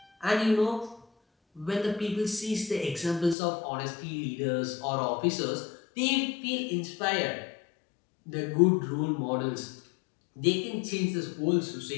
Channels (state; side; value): drops out; right; at 3.4 s